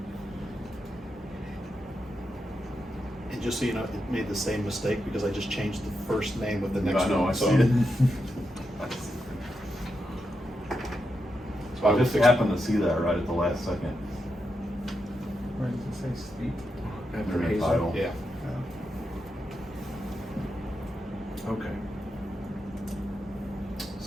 And just so you know, it made the same mistake because I just changed the first name of the next I know, one. I So- see it. So I I will just fix happened to see that right at the last second. Where does it say street? After In the Hazel. title. Yeah. Okay.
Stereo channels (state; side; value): normal; both; correlation 0.86